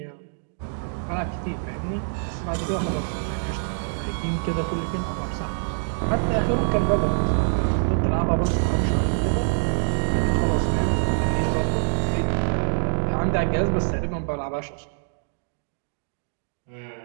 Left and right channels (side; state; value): left; silent; digital silence